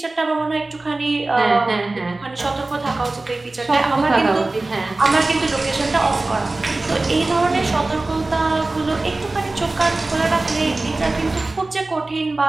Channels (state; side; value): quieter; left; 3.1 dB